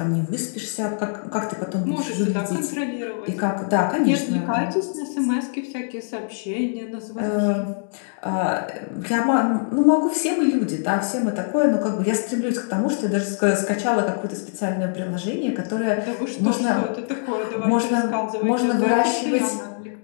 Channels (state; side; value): silent; right; digital silence